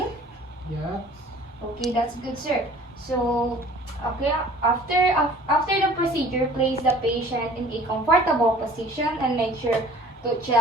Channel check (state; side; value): normal; both; correlation 0.49